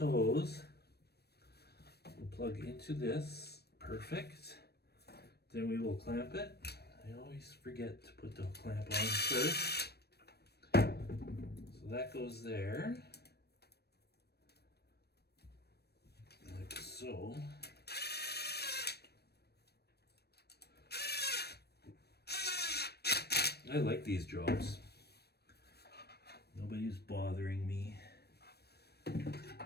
will plug into this. Perfect. Then we will clamp it. I always forget to put the clamp on first. So that goes there. Like so. I like these jobs. Nobody's bothering me.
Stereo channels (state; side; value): late; right; 0.47 ms